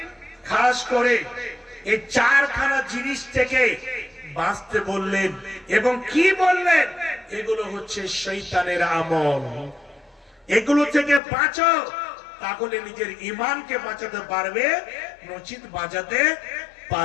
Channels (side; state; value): right; drops out; at 11.2 s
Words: খাস করে এই চারখানা জিনিস থেকে বাঁচতে বললেন এবং কি বললেন? এগুলো হচ্ছে শয়তানের আমল। এগুলো থেকে বাঁচো, তাহলে নিজের ঈমানকে বাঁচাতে পারবে, নচিত বাঁচাতে